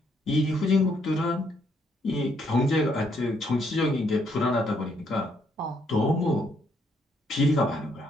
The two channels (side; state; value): both; normal; correlation 0.72